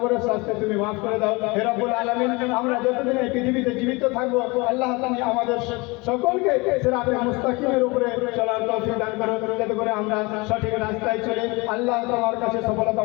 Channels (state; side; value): quieter; right; 25.7 dB